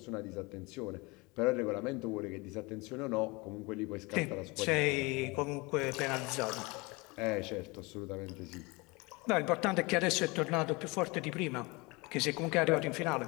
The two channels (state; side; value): quieter; right; 25.7 dB